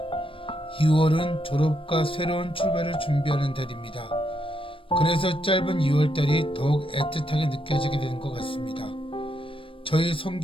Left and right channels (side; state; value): right; late; 0.25 ms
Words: 2월은 졸업과 새로운 출발을 준비하는 달입니다. 그래서 짧은 2월달이 더욱 애틋하게 느껴지게 되는 것 같습니다. 저희